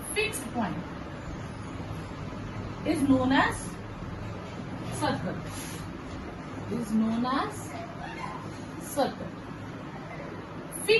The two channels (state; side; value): identical; both; correlation 1.00